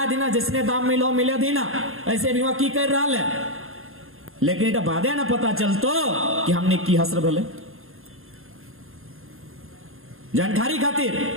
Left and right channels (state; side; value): late; left; 0.61 ms